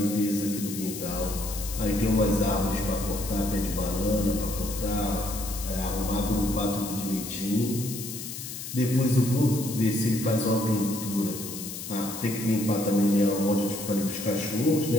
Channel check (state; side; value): noise; left; hiss, 9 dB below the sound